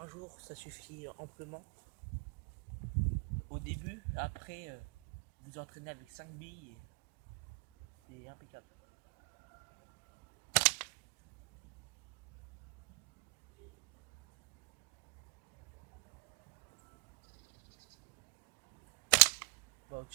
jour, ça suffit amplement. Au début, après, vous entraînez avec 5 billes et c'est impeccable. Bah,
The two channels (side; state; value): left; quieter; 36.9 dB